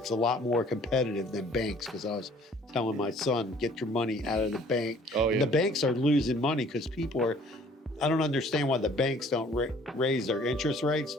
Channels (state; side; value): normal; both; correlation 0.55